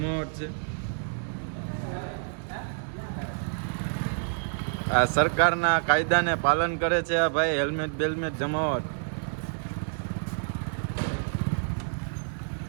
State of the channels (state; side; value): silent; left; digital silence